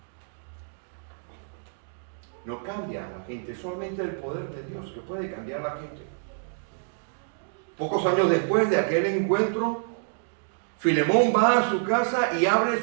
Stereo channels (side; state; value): left; silent; digital silence